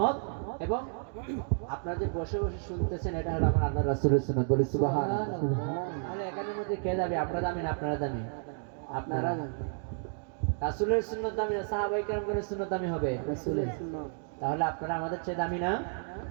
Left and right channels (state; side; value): silent; left; 57 dB below the other